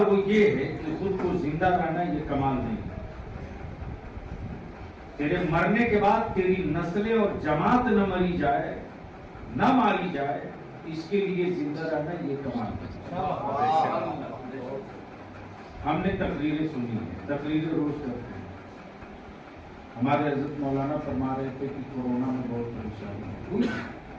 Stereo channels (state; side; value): identical; both; correlation 1.00